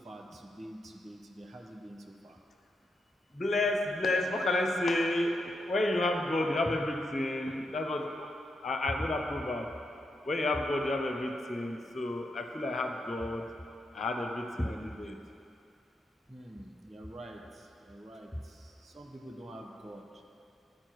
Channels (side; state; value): both; normal; correlation 0.83